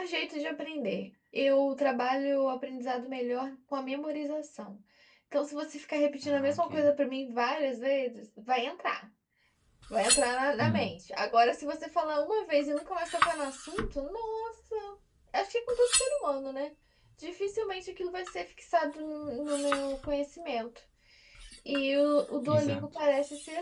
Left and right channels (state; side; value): identical; both; correlation 1.00